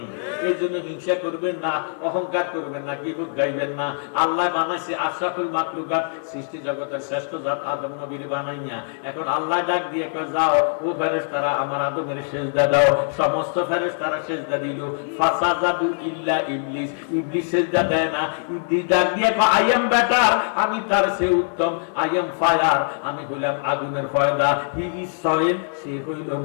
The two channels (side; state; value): right; silent; digital silence